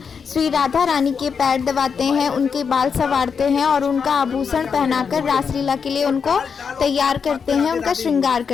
श्री राधा रानी के पैर दबाते हैं, उनके बाल संवारते हैं और उनका आभूषण पहनाकर रासलीला के लिए उनको तैयार करते हैं, उनका श्रृंगार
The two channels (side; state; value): right; quieter; 6.2 dB